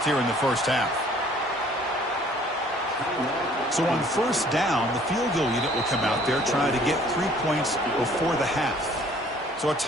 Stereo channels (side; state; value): both; normal; correlation 0.56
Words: here in the first half. So on first down, the field goal unit will come out there trying to get 3 points before the half. So a